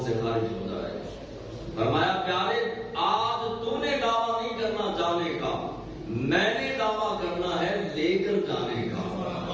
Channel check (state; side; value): identical; both; correlation 1.00